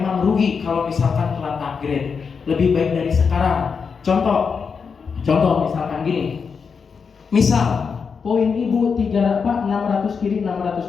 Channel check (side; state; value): right; quieter; 5.7 dB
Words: rugi kalau misalkan telat upgrade. Lebih baik dari sekarang. Contoh misalkan gini. Misal poin ibu 600 kiri 600